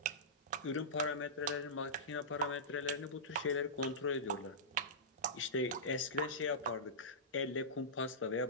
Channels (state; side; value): normal; both; correlation -0.16